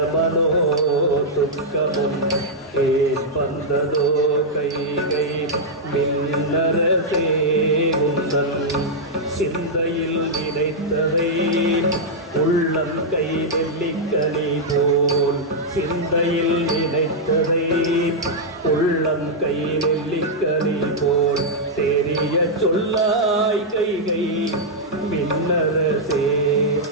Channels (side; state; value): both; normal; correlation -0.06